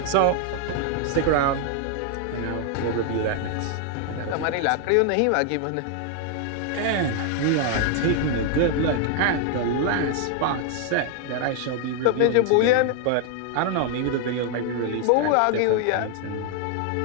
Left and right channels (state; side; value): different; both; correlation 0.00